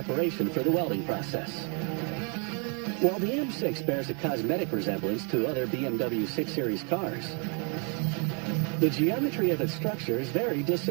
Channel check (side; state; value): left; quieter; 37.0 dB